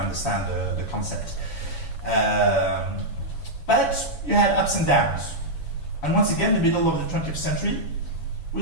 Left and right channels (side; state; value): right; late; 7.1 ms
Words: the concept. But you had ups and downs. And once again, in the middle of the 20th century,